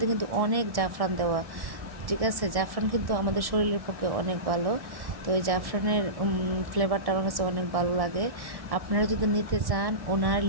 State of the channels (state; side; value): late; left; 1.7 ms